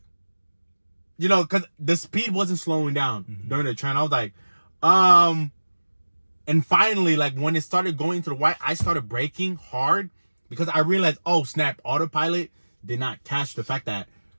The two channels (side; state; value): both; inverted; correlation -1.00